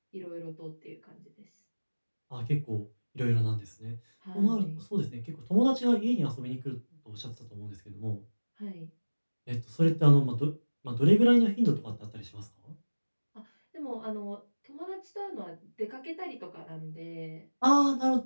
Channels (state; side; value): inverted; both; correlation -1.00